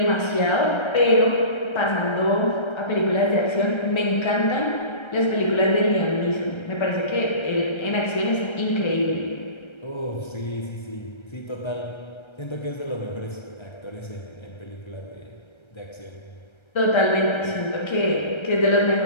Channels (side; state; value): right; late; 1.3 ms